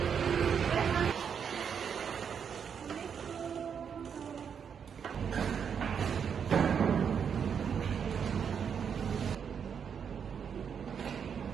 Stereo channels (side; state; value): left; quieter; 7.2 dB